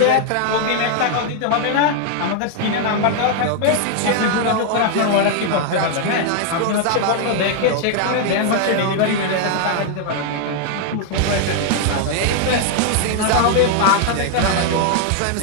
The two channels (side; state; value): both; different; correlation 0.00